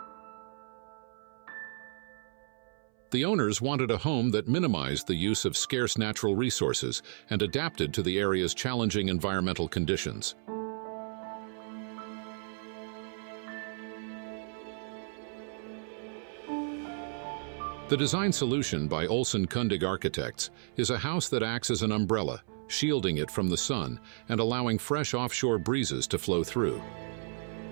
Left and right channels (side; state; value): left; silent; 56 dB below the other